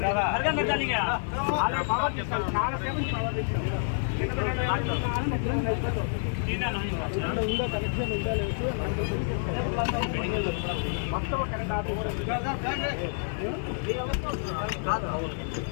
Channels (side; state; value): right; silent; 59 dB below the other